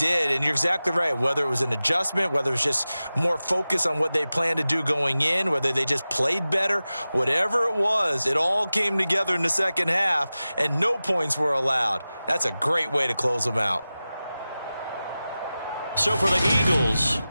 and you're exactly right. Whether it was an adjustment, whether it was just more focus on what they planned to do going in, whether they just played better, whatever it was, it all came together in the second half, and no points were allowed. That's a great way to close them out. So for the Eagles,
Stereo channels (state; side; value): inverted; both; correlation -0.95